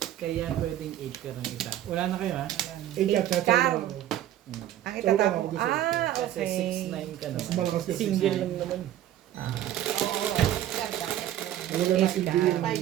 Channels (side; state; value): left; quieter; 12.3 dB